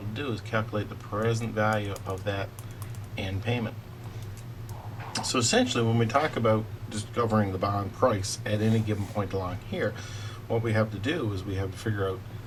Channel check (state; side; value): identical; both; correlation 1.00